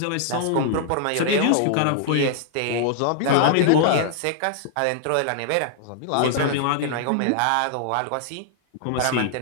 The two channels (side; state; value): both; different; correlation -0.01